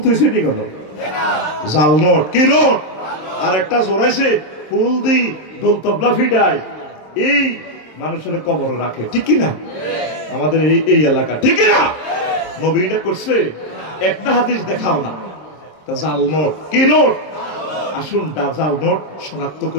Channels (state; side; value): late; right; 27 ms